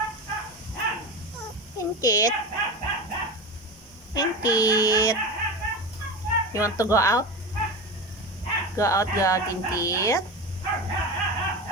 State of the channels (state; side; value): normal; both; correlation 0.24